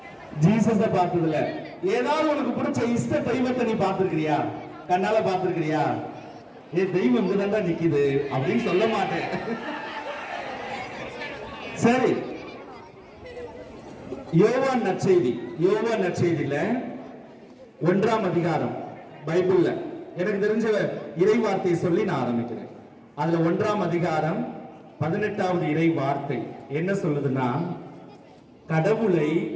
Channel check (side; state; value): both; identical; correlation 1.00